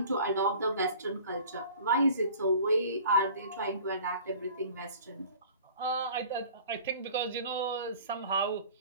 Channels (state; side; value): inverted; both; correlation -0.46